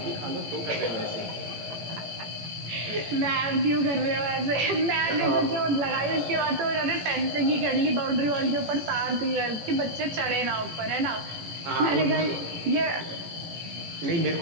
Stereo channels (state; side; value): late; left; 18 ms